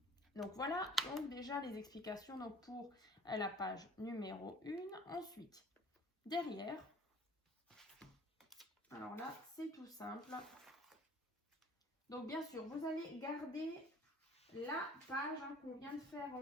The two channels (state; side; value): normal; both; correlation 0.51